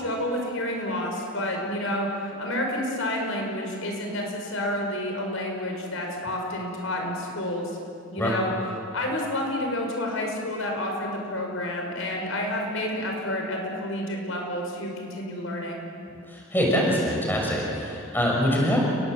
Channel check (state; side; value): normal; both; correlation 0.31